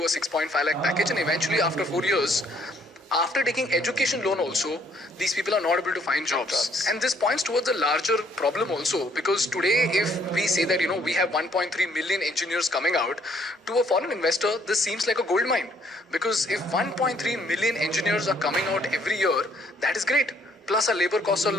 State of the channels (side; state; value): both; normal; correlation 0.65